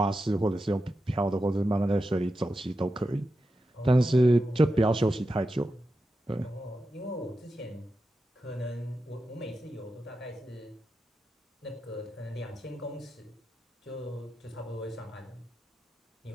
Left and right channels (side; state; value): both; normal; correlation 0.90